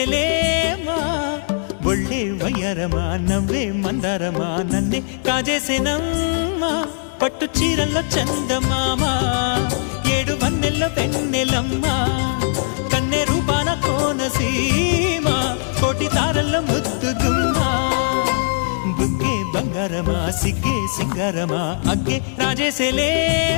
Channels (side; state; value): right; silent; 66 dB below the other